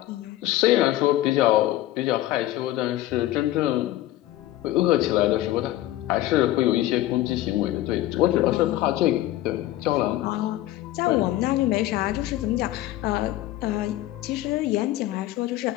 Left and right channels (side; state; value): right; quieter; 15.1 dB